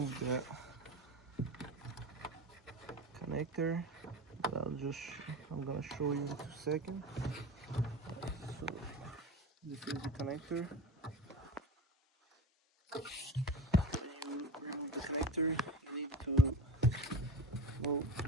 the connector. I'm gonna show you in 2 seconds. So this is the connector. When you remove the connector, you need to move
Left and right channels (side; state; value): both; normal; correlation 0.33